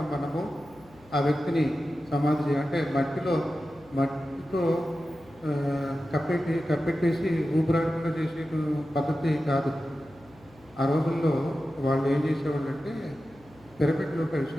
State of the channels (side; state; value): left; noise; hum, 26 dB below the sound